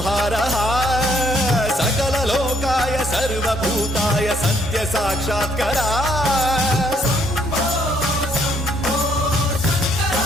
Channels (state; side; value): normal; both; correlation 0.68